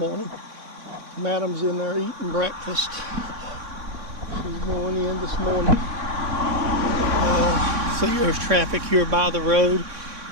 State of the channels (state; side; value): late; left; 3.6 ms